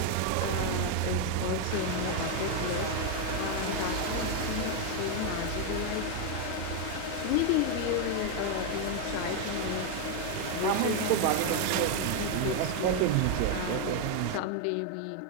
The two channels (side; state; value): both; different; correlation 0.01